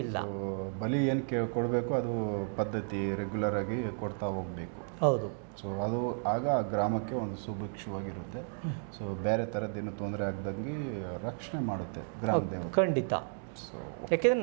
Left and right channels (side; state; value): left; silent; 56 dB below the other